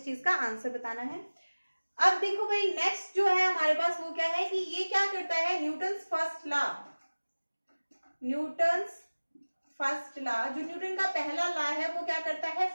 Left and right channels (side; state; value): both; inverted; correlation -1.00